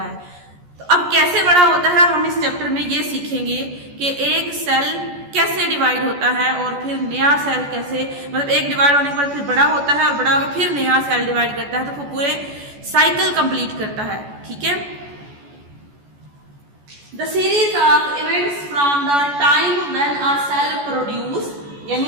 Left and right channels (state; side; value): late; left; 14 ms